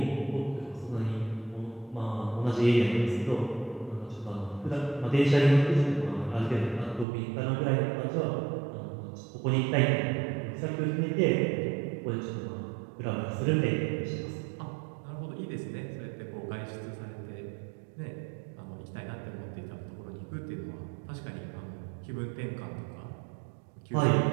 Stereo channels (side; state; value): left; drops out; at 7.1 s